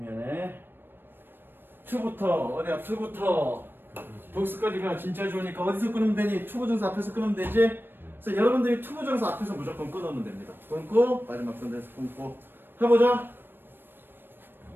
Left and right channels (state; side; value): late; left; 0.097 ms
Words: 2부터. 어디야? 2부터. 복수까지가 진짜 좋으니까 어디서 끊으면 되니? 투부정사 앞에서 끊으면 되지? 그래서 여러분들이 투부정사 앞에서 무조건 끊으면 됩니다. 끊고 마지막 선에서 끊고 해보자.